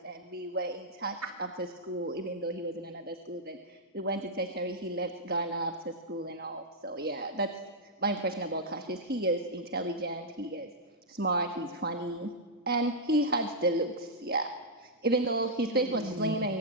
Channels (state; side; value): normal; both; correlation -0.07